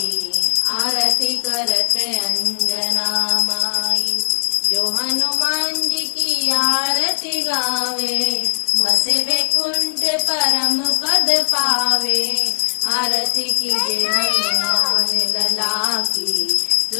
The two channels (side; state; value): right; silent; 60 dB below the other